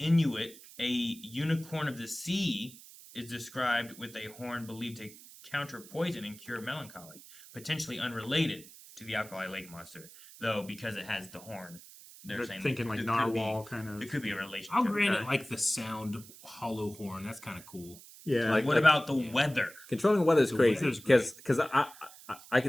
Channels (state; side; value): noise; right; hiss, 19 dB below the sound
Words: a unicorn of the sea is described with a horn believed to counter poison and cure melancholy, potentially unrelated to the Alkali Lake monster, though because it has the horn, they're saying thinking like there could be- narwhal kind of. There could be a relationship. I'll grant Okay. it like the sound hollow horn. That's kind of cool. Yeah. Like- What about the weather? Controlling weather is The crazy weather's because I